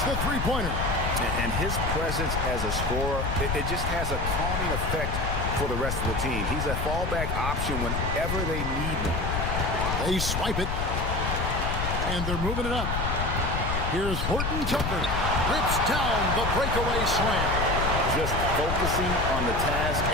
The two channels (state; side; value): noise; left; rumble, 2 dB below the sound